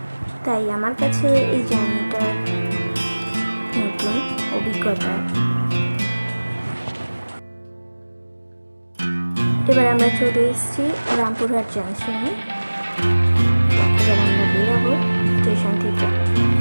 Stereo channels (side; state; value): both; inverted; correlation -1.00